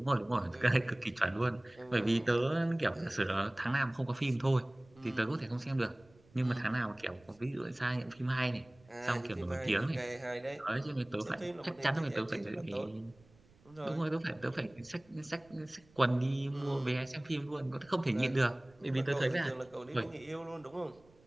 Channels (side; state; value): right; noise; rumble, 28 dB below the sound